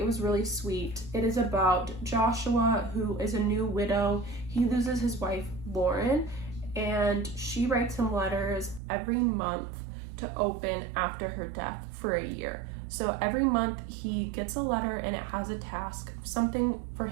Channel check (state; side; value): drops out; left; at 8.8 s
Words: It was really sweet. It is about Joshua, who is a new widow. He loses his wife, Lauren, and she writes him letters every month to open after her death for a year. So every month he gets a letter and it has a task, something for